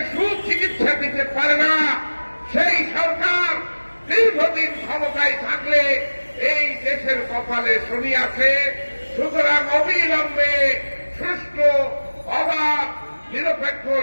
সুচিকিৎসা দিতে পারে না, সেই সরকার দীর্ঘদিন ক্ষমতায় থাকলে এই দেশের কপালে শনি আছে। সুতরাং অবিলম্বে সুষ্ঠু অবাধ নিরপেক্ষ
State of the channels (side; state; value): both; inverted; correlation -1.00